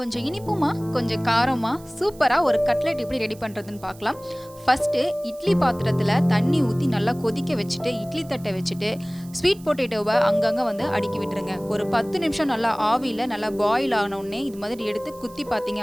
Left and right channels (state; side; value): noise; right; hiss, 23 dB below the sound